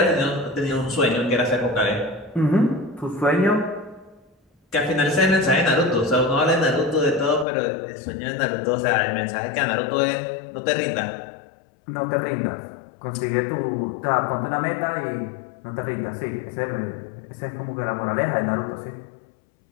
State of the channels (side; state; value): right; drops out; at 7.5 s